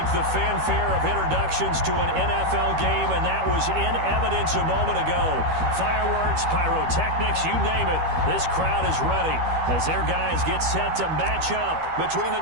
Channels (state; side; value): late; left; 13 ms